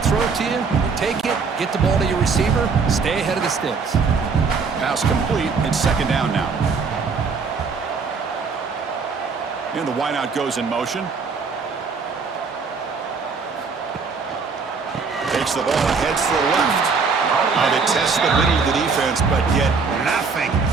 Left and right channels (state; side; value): quieter; left; 5.0 dB